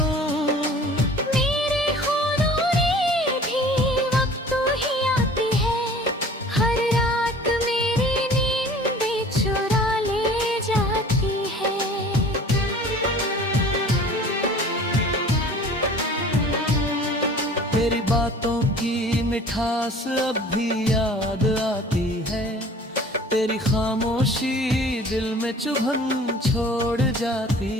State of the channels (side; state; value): both; normal; correlation 0.47